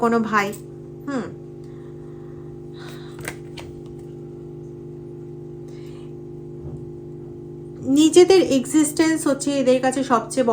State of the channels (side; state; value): both; identical; correlation 1.00